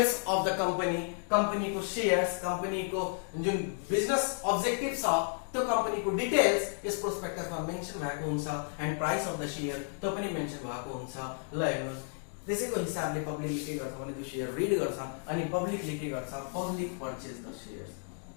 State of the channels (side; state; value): right; silent; 56 dB below the other